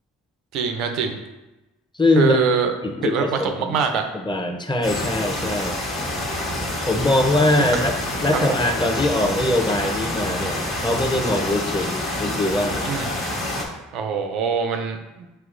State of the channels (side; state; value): both; normal; correlation 0.52